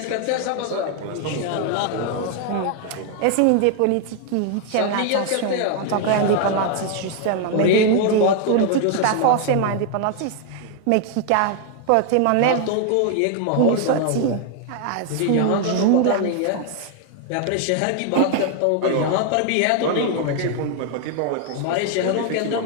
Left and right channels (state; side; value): different; both; correlation 0.00